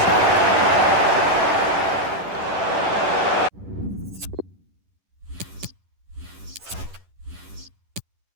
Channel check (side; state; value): left; late; 11 ms